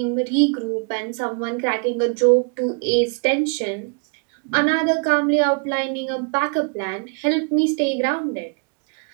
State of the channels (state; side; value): quieter; left; 36.9 dB